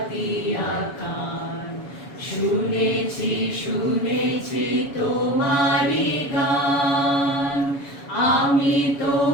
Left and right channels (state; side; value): late; right; 7.1 ms